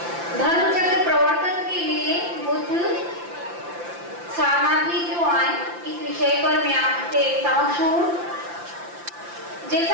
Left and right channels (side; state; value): left; late; 5.8 ms